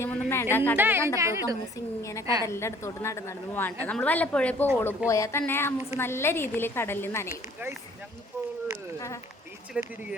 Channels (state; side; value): normal; both; correlation 0.55